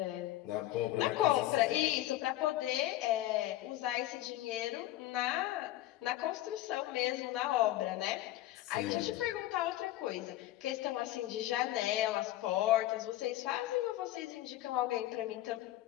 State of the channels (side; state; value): right; quieter; 15.0 dB